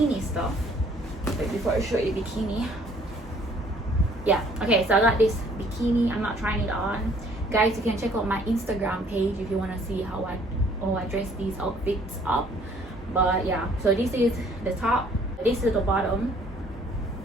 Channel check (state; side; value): normal; both; correlation 0.60